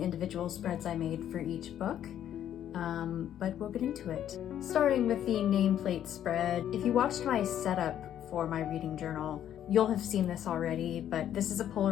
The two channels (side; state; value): right; quieter; 10.6 dB